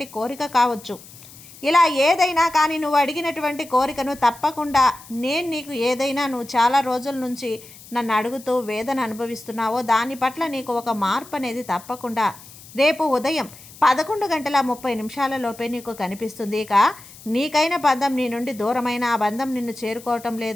కోరిక కావచ్చు. ఇలా ఏదైనా కానీ నువ్వు అడిగినటువంటి కోరికను తప్పకుండా నేను నీకు ఏదైనా నువ్వు చాలా రోజుల నుంచి నన్ను అడుగుతూ వేదన అనుభవిస్తున్నావో దాని పట్ల నీకు ఒక మార్పు అనేది తప్పకుండా రేపు ఉదయం 11:30 నీకు కనిపిస్తుంది. ఇక నీకైన బంధం నీ నుండి దూరమైన ఆ బంధం నిన్ను చేరుకోవటం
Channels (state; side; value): noise; left; hiss, 19 dB below the sound